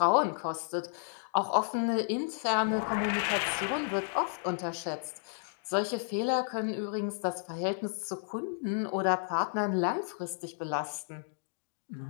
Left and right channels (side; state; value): right; silent; digital silence